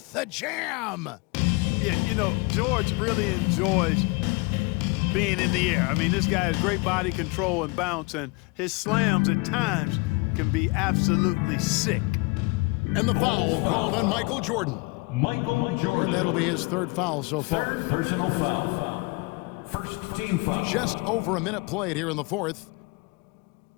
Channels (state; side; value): quieter; right; 27.2 dB